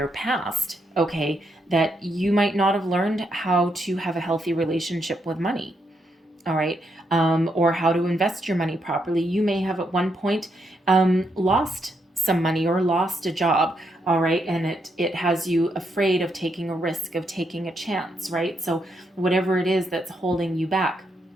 past, okay, that you might not have learned how to have a healthy relationship with money. All right. Or how to invest your money properly. You may have at one point lost some money or lost a job. All right. And it has you afraid of taking a risk, of taking a chance. Right. So whatever it is that's holding you back,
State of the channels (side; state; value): both; normal; correlation 0.79